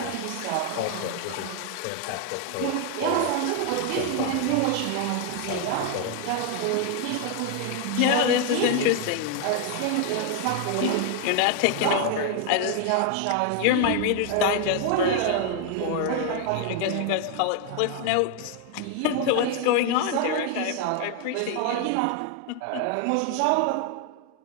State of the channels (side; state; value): both; different; correlation 0.01